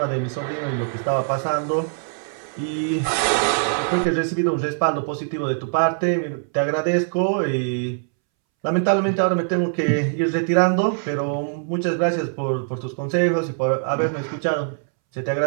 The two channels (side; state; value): left; silent; 64 dB below the other